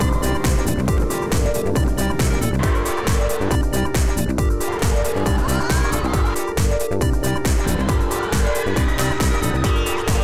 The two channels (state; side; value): identical; both; correlation 1.00